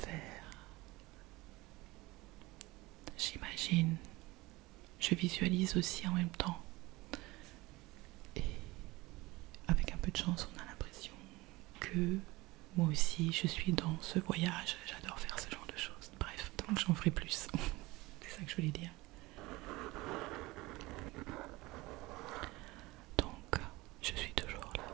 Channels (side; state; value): left; quieter; 21.1 dB